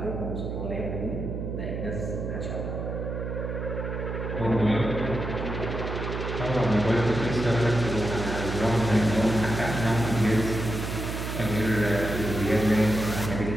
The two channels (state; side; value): noise; right; hum, 4 dB below the sound